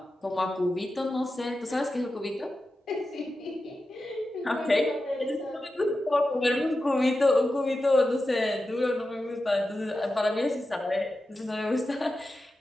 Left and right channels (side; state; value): both; normal; correlation 0.92